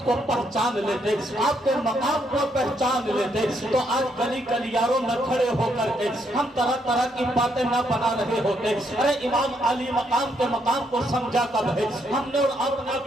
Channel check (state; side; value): normal; both; correlation 0.75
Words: کو پہچان لیتے، آپ کے مقام کو پہچان لیتے، تو آج گلی گلیاروں میں کھڑے ہو کر کے ہم طرح طرح کی باتیں نہ بنا رہے ہوتے۔ ارے امام علی مقام کے مقام کو سمجھا کب ہے، ہم نے اور آپ نے